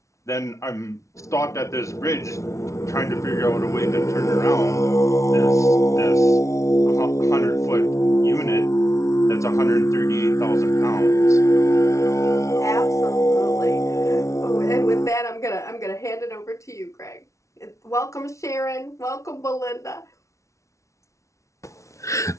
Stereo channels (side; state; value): right; late; 0.14 ms